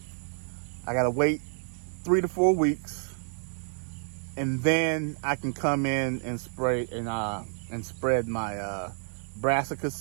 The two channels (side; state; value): left; silent; digital silence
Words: I gotta wait 3 to 4 weeks, and then I can come in and spray and spread my brassica